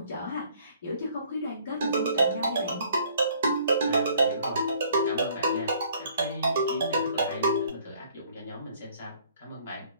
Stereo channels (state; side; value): inverted; both; correlation -0.60